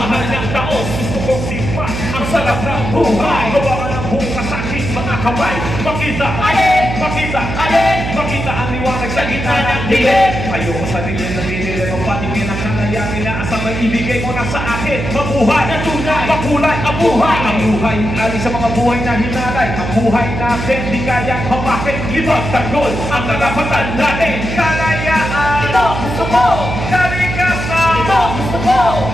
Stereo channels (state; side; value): noise; right; hum, 5 dB below the sound